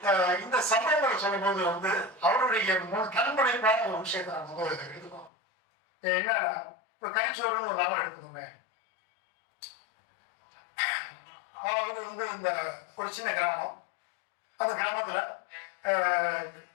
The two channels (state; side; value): drops out; right; at 5.3 s